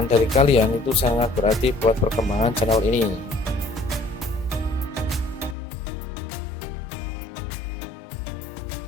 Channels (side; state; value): right; drops out; at 5.6 s